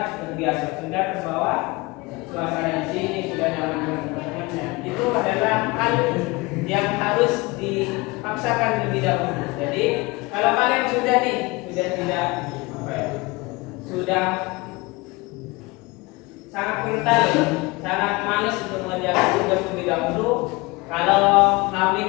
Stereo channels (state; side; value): quieter; right; 23.9 dB